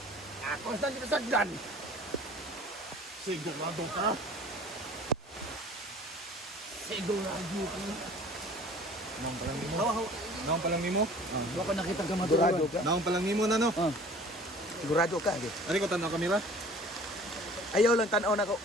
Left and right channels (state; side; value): normal; both; correlation 0.48